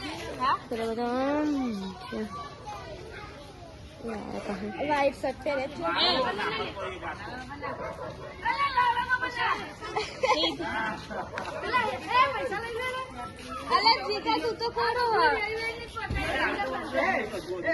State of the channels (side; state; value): both; identical; correlation 1.00